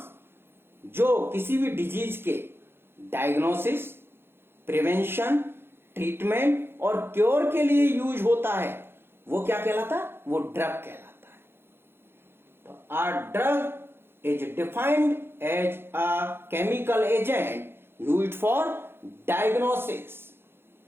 जो किसी भी disease के diagnosis, prevention, treatment और cure के लिए यूज होता है, वो क्या कहलाता है? वो ड्रग कहलाता है. तो a drug is defined as a chemical agent used for diagnosis,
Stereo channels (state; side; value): late; left; 0.11 ms